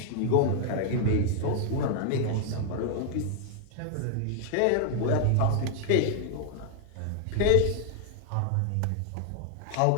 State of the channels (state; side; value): different; both; correlation 0.00